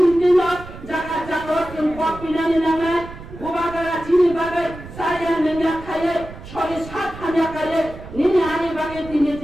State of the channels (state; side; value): noise; right; rumble, 15 dB below the sound